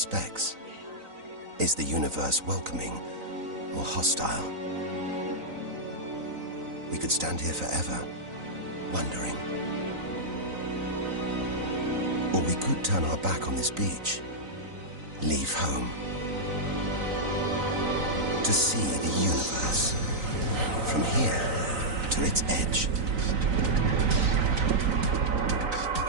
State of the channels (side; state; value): left; late; 3.9 ms